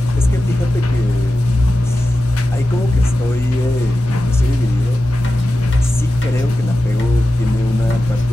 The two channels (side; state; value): both; normal; correlation 0.93